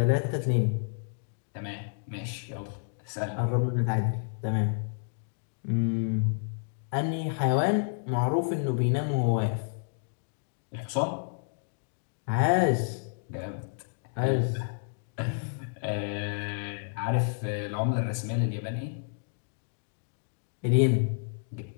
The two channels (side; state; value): right; silent; digital silence